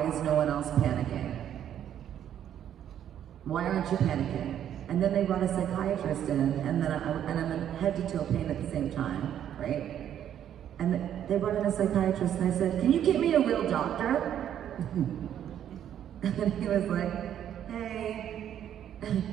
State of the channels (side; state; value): left; quieter; 10.2 dB